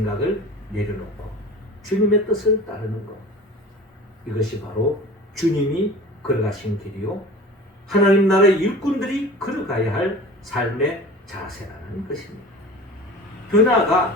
내려놓고 주님의 뜻을 따르는 것, 이것이 바로 주님이 걸어가신 길이요 하나님 나라의 일꾼들이 걸어가야 할 삶의 자세라는 것입니다. 더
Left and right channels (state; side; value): normal; both; correlation 0.39